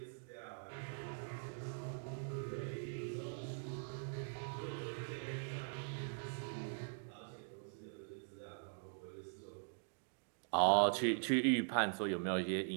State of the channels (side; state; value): left; silent; digital silence